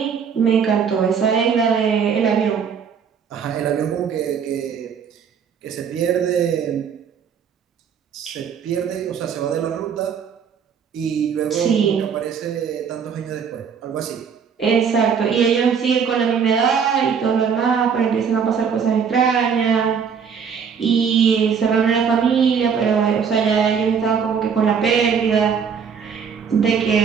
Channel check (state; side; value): quieter; left; 6.7 dB